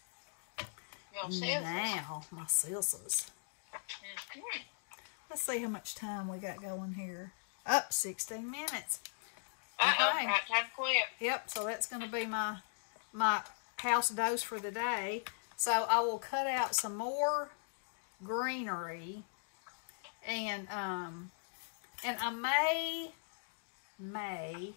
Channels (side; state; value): right; silent; digital silence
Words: your scissors. Now, my scissors. Mhm. Let's see how much time we got going here. Up 16 minutes. Uh-oh, Okay. right time to quit. Yep, so that's going to be my house dose for the day. So I will cut out some more greenery, and I may